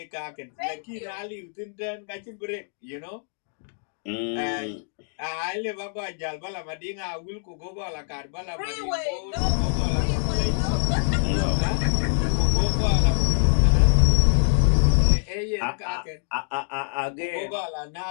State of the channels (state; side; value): silent; right; digital silence